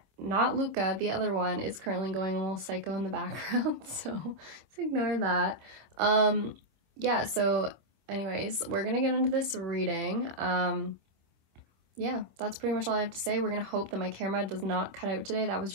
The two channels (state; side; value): late; left; 26 ms